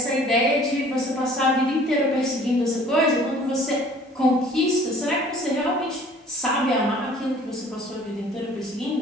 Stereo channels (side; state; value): both; normal; correlation 0.52